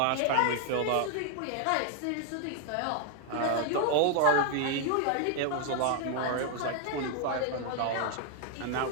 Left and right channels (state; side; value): different; both; correlation 0.00